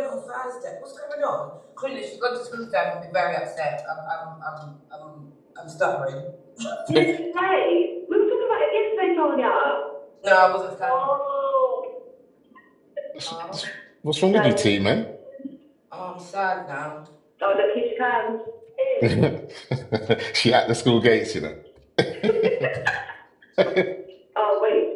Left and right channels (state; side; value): identical; both; correlation 1.00